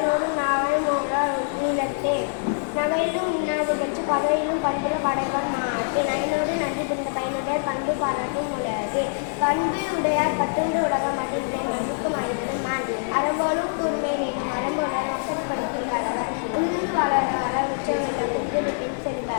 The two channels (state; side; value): silent; right; digital silence